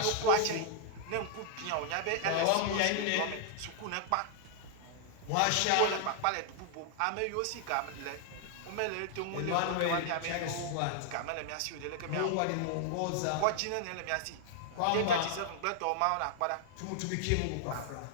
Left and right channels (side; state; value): both; different; correlation 0.00